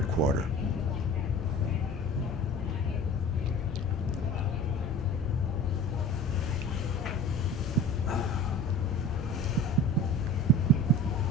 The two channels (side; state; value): both; normal; correlation 0.39